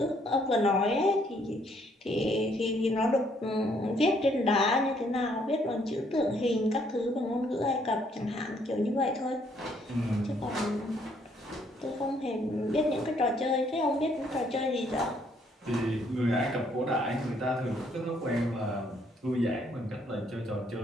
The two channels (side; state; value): both; normal; correlation 0.68